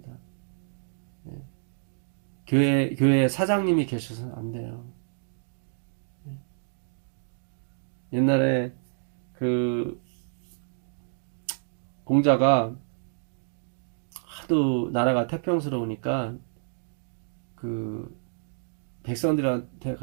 교회 사장님이 계셔서는 안 돼요. 옛날에 그 공자가 하도 나라가 태평스러우니까 그 백성들한테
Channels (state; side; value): silent; left; digital silence